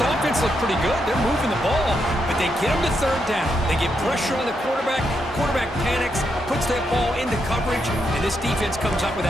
offense looked pretty good. They're moving the ball, but they get them to third down. They get pressure on the quarterback. Quarterback panics, puts that ball into coverage, and this defense comes up with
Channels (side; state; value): both; normal; correlation 0.81